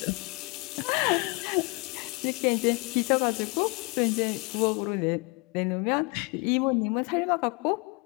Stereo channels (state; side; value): quieter; right; 28.8 dB